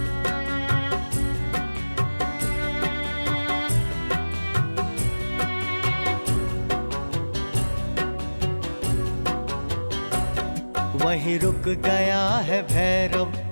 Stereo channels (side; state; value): both; inverted; correlation -1.00